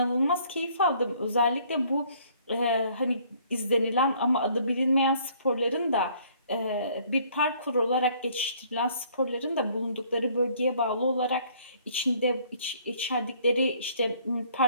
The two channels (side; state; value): both; inverted; correlation -0.60